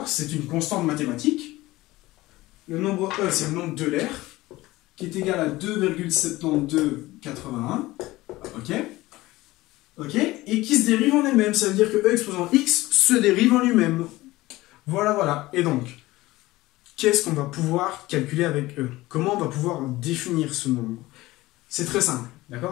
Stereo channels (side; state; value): right; quieter; 18.6 dB